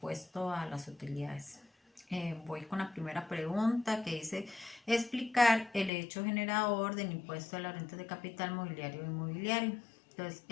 a las utilidades. Voy con la primera pregunta, que dice explicar el hecho generador del impuesto a la renta de capital mobiliario e inmobiliario. Entonces,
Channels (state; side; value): drops out; right; at 5.9 s